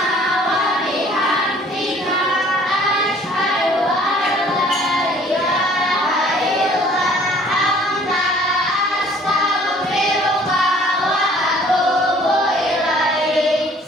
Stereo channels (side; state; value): both; normal; correlation 0.55